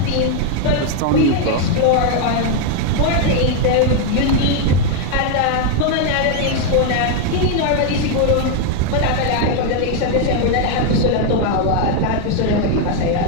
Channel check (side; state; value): both; different; correlation 0.01